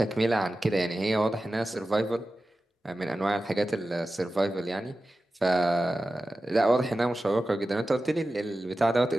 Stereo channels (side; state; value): both; normal; correlation 0.94